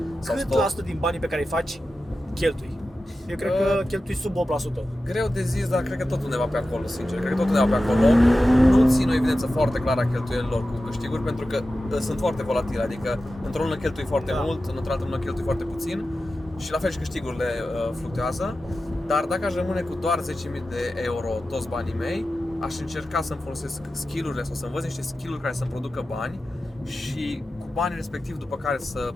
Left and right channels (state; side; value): normal; both; correlation 0.93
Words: sau Cât stock. la sută din banii pe care îi faci, cheltui? Eu cred că cheltui sub 8%. Greu de zis, dar cred că tot undeva pe acolo, sincer. Cred că tot undeva pe acolo. Nu țin o evidență foarte clară a cheltuielilor cu câștiguri, pentru că sunt foarte volatile. Adică într-o lună cheltui foarte mult, într-o altă lună cheltui foarte puțin. Și la fel și câștigurile fluctuează. Dar dacă aș rămâne cu doar 10.000 de euro toți banii mei, aș încerca să-mi folosesc skill-urile sau să învăț niște skill-uri care să-mi producă bani și cu banii respectiv după care să